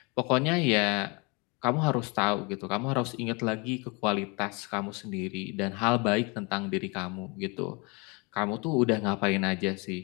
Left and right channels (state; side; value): quieter; right; 29.4 dB